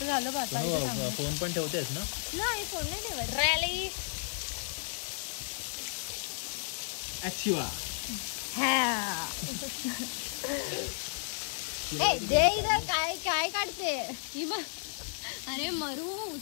झालं बा. फोन पण ठेवतेस ना. नाही फोन नाही ठेवत. रॅली ऍक्टिवा काय काय काढते ही बघ. अरे मरू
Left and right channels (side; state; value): right; silent; digital silence